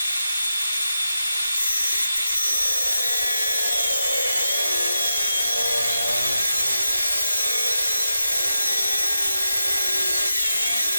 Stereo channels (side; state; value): both; inverted; correlation -0.88